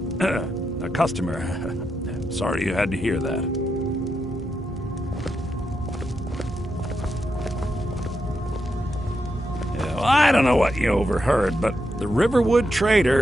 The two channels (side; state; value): both; normal; correlation 0.84